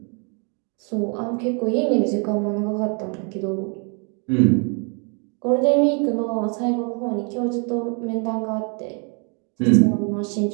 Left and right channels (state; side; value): quieter; left; 37.1 dB